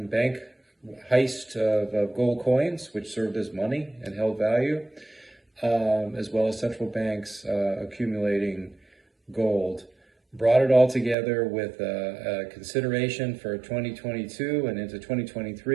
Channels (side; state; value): left; drops out; at 11.2 s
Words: bank heist of gold coins, which served as money and held value, as well as central banks accumulating gold. Brought it all together with a consideration for 2022 and into